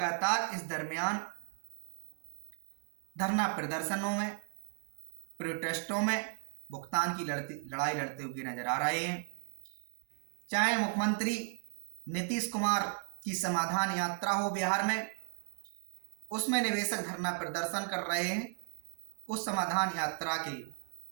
इस दरमियान धरना प्रदर्शनों में, प्रोटेस्टों में भुगतान की लड़ाई लड़ते हुए नजर आ रहे हैं। चाहे मुख्यमंत्री नीतीश कुमार की समाधान यात्रा हो बिहार में, उसमें निवेशक धरना प्रदर्शन कर रहे हैं, उस समाधान यात्रा के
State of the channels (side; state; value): left; silent; digital silence